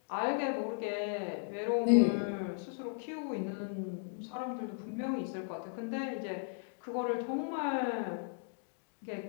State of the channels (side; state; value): right; silent; 54 dB below the other